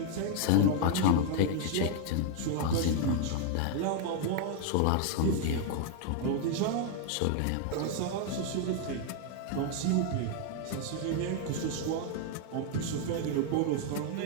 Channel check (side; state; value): both; different; correlation 0.00